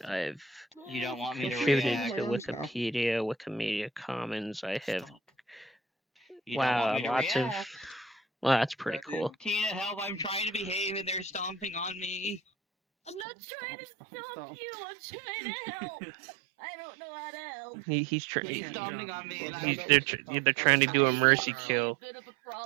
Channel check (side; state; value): left; drops out; at 13.2 s